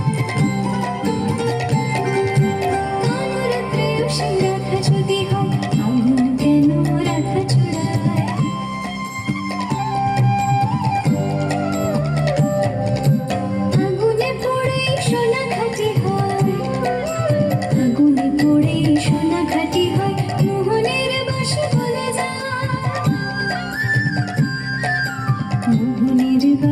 কানুর প্রেয়সী রাখা যদি হয়, আগুন কেন রাখা চূড়ায়? আগুনে পড়ে সোনা খাঁটি হয়, আগুনে পড়ে সোনা খাঁটি হয়। মোহনের বাঁশি বলে যায়, মোহনের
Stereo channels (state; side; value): identical; both; correlation 1.00